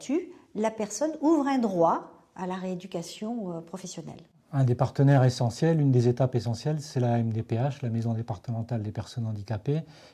la personne ouvre un droit à la rééducation professionnelle. Un des partenaires essentiels, une des étapes essentielles, c'est la MDPH, la Maison départementale des personnes handicapées,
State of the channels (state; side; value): identical; both; correlation 1.00